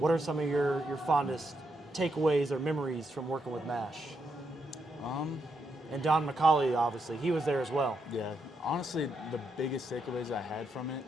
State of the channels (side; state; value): both; normal; correlation 0.81